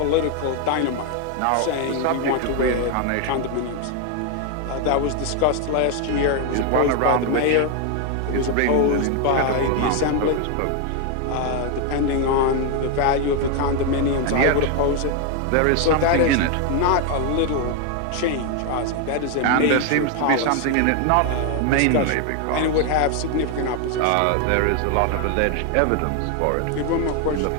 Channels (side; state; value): both; different; correlation 0.01